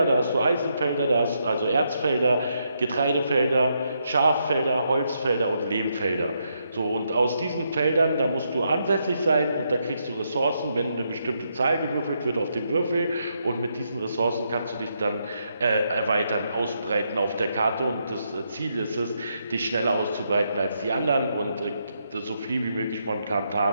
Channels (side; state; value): both; inverted; correlation -0.79